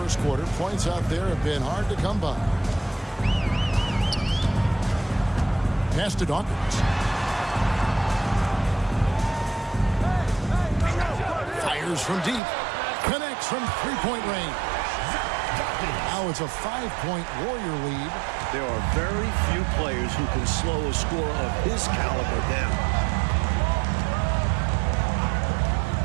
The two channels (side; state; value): left; drops out; at 12.4 s